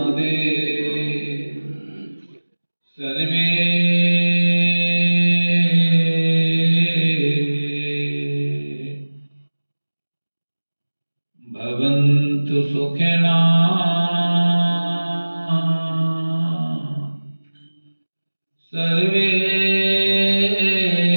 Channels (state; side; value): inverted; both; correlation -1.00